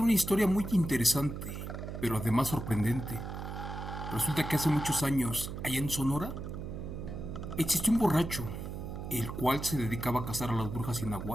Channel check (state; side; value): noise; right; hum, 7 dB below the sound